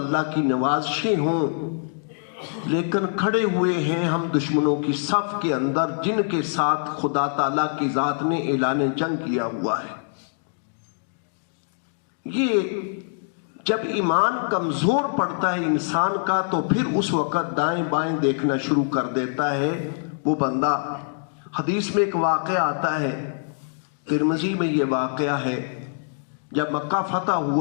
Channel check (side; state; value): right; silent; digital silence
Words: کی نوازشیں ہوں، لیکن کھڑے ہوئے ہیں ہم دشمنوں کی صف کے اندر، جن کے ساتھ خدا تعالیٰ کی ذات نے اعلان جنگ کیا ہوا ہے۔ یہ جب ایمان کمزور پڑتا ہے انسان کا تو پھر اس وقت دائیں بائیں دیکھنا شروع کر دیتا ہے وہ بندہ۔ حدیث میں ایک واقعہ آتا ہے، ترمذی میں یہ واقعہ ہے، جب مکہ فتح